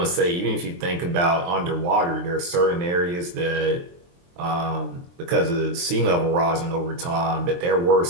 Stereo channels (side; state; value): left; late; 23 ms